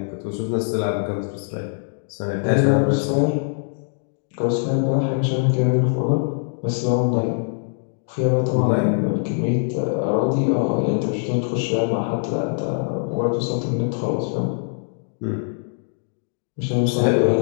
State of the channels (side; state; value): right; silent; digital silence